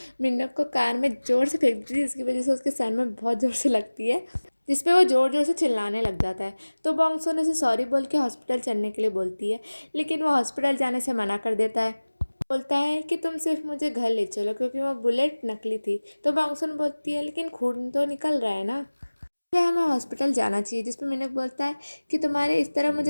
मिन्नक को कार में ज़ोर से फेंक देती है, जिसकी वजह से उसके सर में बहुत ज़ोर से लगती है, जिस पे वो ज़ोर ज़ोर से चिल्लाने लग जाता है। तो बॉन्गसुन उसे सॉरी बोल के हॉस्पिटल चलने के लिए बोलती है, लेकिन वो हॉस्पिटल जाने से मना कर देता है। बोलता है कि तुम सिर्फ मुझे घर ले चलो, क्योंकि वो बुलेट नकली थी। तो बॉन्गसुन बोलती है लेकिन खून तो निकल रहा है ना, इसलिए हमें हॉस्पिटल जाना चाहिए। जिस पे मिनक बोलता है कि तुम्हारे इस तरह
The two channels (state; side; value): inverted; both; correlation -1.00